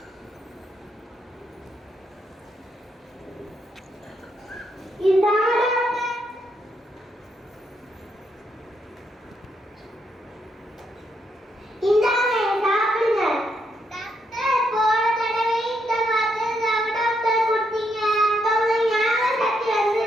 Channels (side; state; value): both; normal; correlation 0.77